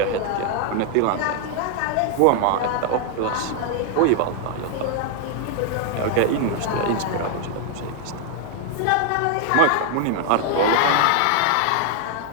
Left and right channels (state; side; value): different; both; correlation 0.00